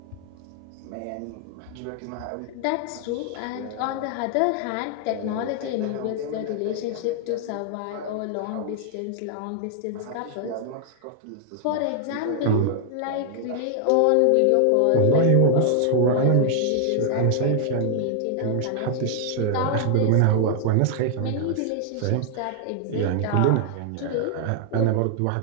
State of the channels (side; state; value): both; different; correlation 0.00